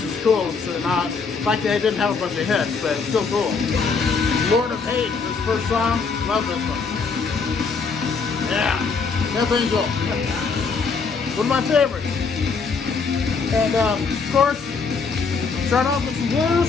is cool. So not like they didn't have a bunch of hits, but it's still cool. Lord of Hate, this first song. Love this one. Yeah, Death Angel. One of my favorites. And of course, start off with some blues.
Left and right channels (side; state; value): right; quieter; 5.0 dB